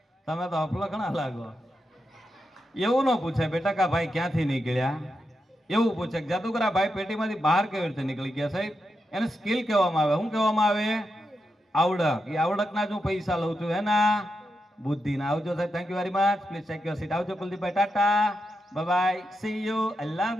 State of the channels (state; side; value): normal; both; correlation 0.86